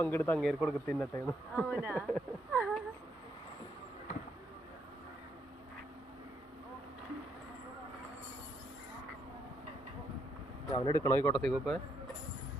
അങ്ങേര് കൊടുക്ക തിന്നട്ടെ. അവനെടുക്കണോ ഈ കോട്ടത്തേക്ക് ഇപ്പൊ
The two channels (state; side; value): normal; both; correlation 0.75